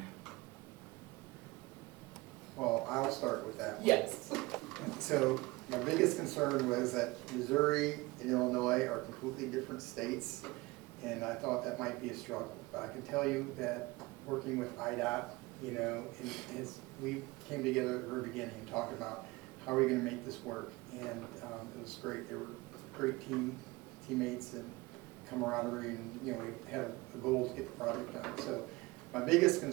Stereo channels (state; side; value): quieter; left; 22.1 dB